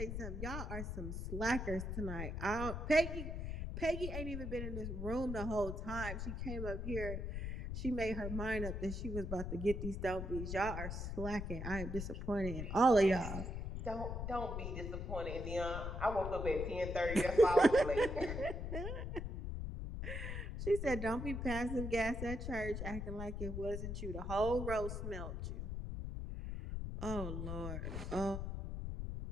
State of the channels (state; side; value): noise; left; rumble, 4 dB below the sound